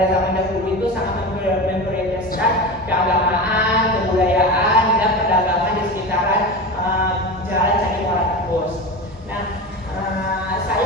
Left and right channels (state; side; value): normal; both; correlation 0.26